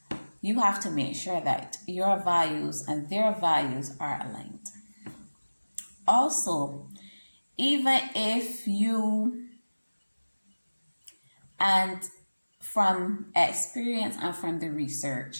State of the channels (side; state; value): both; inverted; correlation -1.00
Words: you have to make sure that your values and their values are aligned. Also, even if you, and from experience and from the